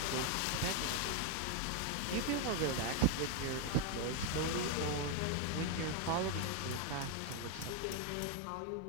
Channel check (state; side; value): different; both; correlation 0.01